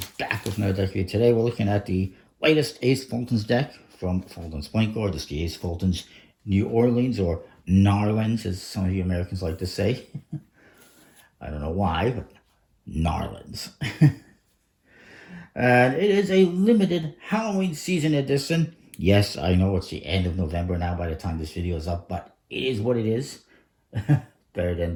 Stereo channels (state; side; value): identical; both; correlation 1.00